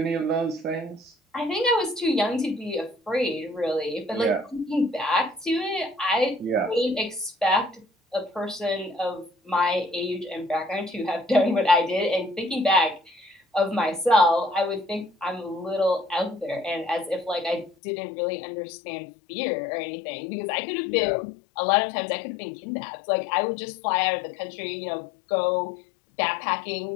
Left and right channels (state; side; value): drops out; right; at 17.8 s